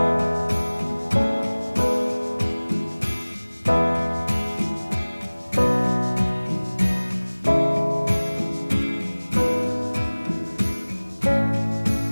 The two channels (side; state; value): both; inverted; correlation -1.00